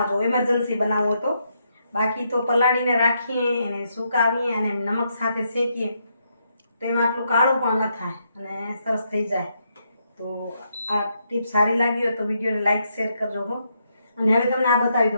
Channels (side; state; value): both; inverted; correlation -0.78